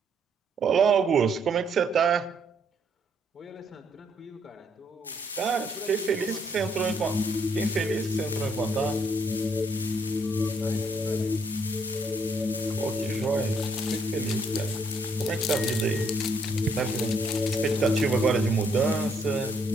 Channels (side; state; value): both; normal; correlation 0.70